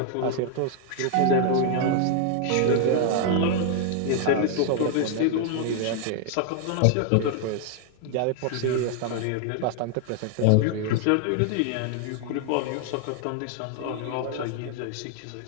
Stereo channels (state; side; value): different; both; correlation 0.00